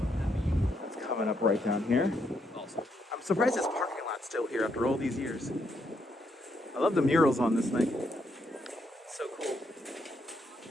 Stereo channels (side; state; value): both; normal; correlation 0.76